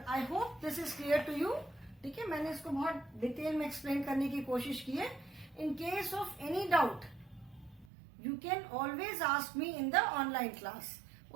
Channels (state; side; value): drops out; left; at 7.9 s